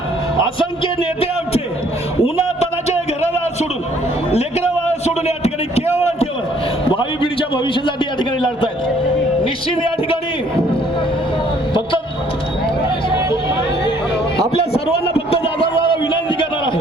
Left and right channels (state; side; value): normal; both; correlation 0.62